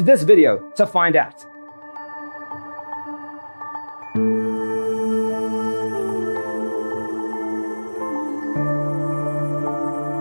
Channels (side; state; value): both; inverted; correlation -1.00